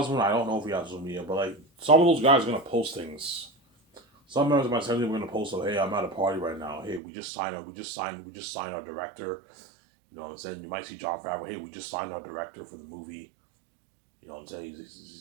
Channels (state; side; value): drops out; left; at 7.0 s